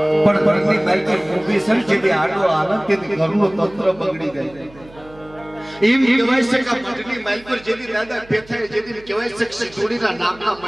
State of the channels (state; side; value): noise; right; hum, 23 dB below the sound